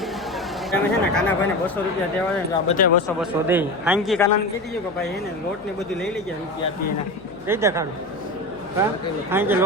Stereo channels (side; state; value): left; noise; hum, 25 dB below the sound